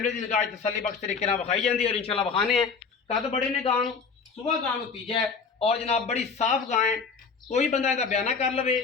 की निगाह तसली बख्श तरीके विखाई जाती है और इंशाल्लाह विखाने हैं। कद बड़े ने गां सुबह गां तीजा है और जनाब बड़ी साफ गां है। कोई बंदा इसका बयाना कर लवे,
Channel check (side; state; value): right; quieter; 5.3 dB